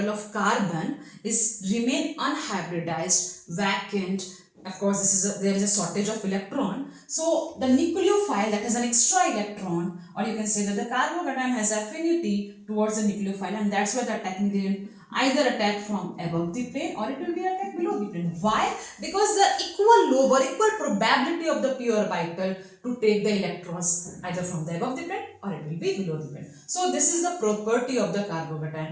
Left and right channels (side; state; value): both; identical; correlation 1.00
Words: of carbon is remain unhybridized, vacant. Of course, there is a shortage of electron. So the nucleophile that has an extra electron, or you can say that the carbocation has affinity towards the nucleophile, and that's why the attacking reagent either attack from above the plane or it will be attacked below the plane. Why? Because the equal lobe or equal probability of the p orbital to take the electrons either from the above the plane or it will be below the plane. So this is the property of the